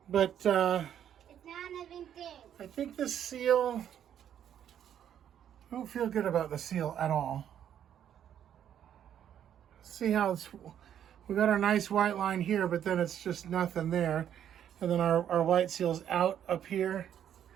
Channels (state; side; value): quieter; left; 9.8 dB